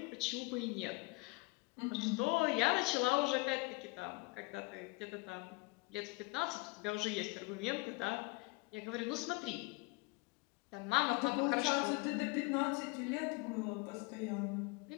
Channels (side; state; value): right; quieter; 26.3 dB